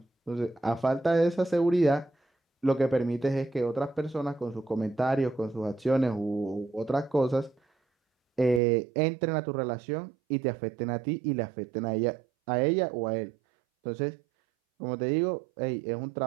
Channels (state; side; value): drops out; left; at 8.6 s